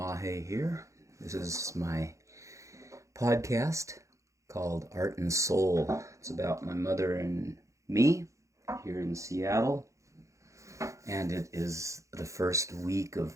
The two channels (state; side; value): late; left; 0.15 ms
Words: here. This is my podcast called Art and Soul. It's about my mother and me here in Seattle, and it is the first week